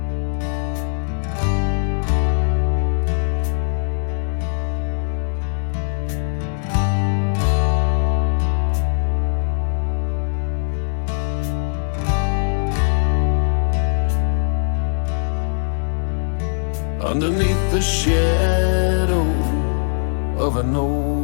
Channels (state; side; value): silent; right; 65 dB below the other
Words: Underneath the shadow of an